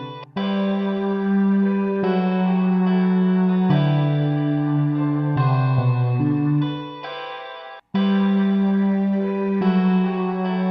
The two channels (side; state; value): both; identical; correlation 1.00